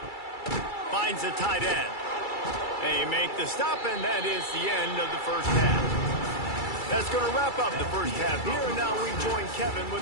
Finds the tight end. They make the stop, and that is the end of the first half. That's going to wrap up the first half here, and now we join Kevin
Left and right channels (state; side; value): late; right; 2.3 ms